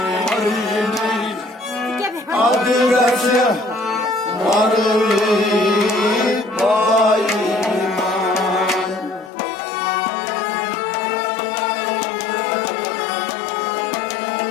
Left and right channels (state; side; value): drops out; right; at 9.3 s